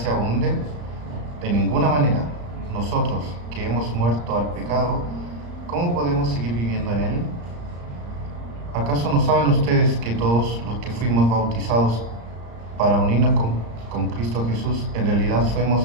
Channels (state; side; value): late; left; 34 ms